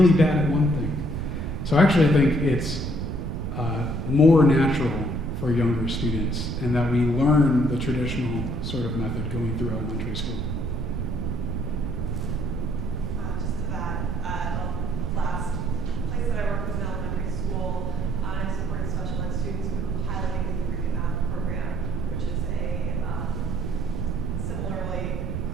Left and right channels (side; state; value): right; noise; rumble, 3 dB below the sound